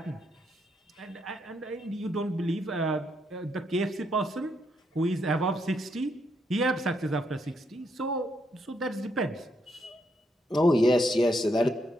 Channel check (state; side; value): normal; both; correlation 0.77